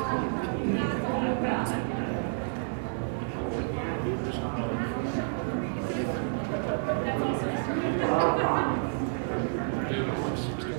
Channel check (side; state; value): left; silent; 58 dB below the other